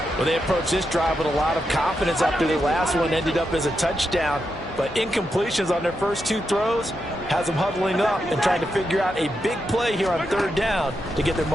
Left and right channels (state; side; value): normal; both; correlation 0.85